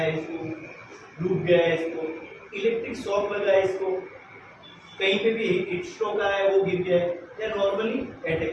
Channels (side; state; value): both; identical; correlation 1.00